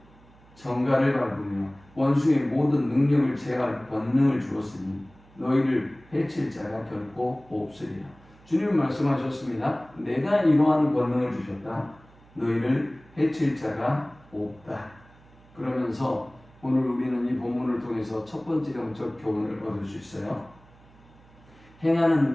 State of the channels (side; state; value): right; noise; hum, 26 dB below the sound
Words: 정갈을 밟으며 원수의 모든 능력을 제할 권능을 주었으니 너희를 해칠 자가 결코 없으리라. 주님은 말씀하셨습니다. 내가 이러한 권능을 주셨다. 너희를 해칠 자가 없다. 그러면서 오늘 우리는 이 본문을 통해서 첫 번째 영적 교훈을 얻을 수 있어요.